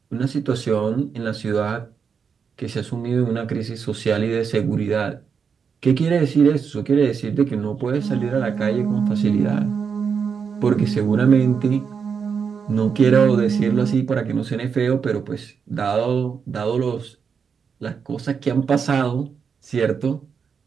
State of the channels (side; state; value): left; quieter; 6.3 dB